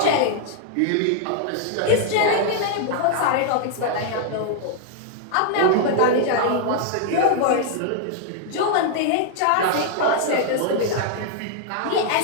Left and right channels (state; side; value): different; both; correlation 0.00